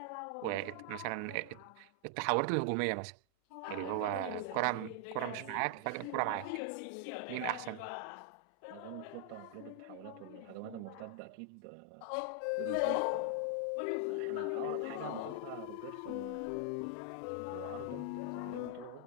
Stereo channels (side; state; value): both; different; correlation 0.00